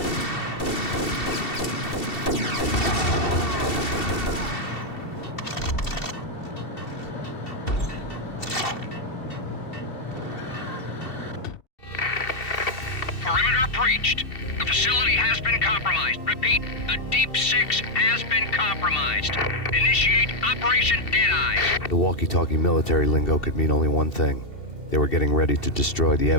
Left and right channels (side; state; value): right; late; 2.7 ms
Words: Perimeter breached. The facility has been compromised. Repeat, the Deep Six has been compromised. Initiate Operation Deadeye. The walkie-talkie military lingo could mean only one thing. They were getting ready to destroy the